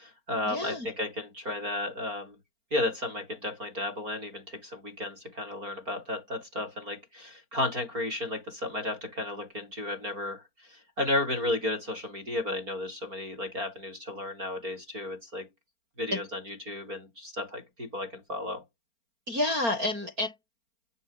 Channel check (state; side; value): late; left; 4.4 ms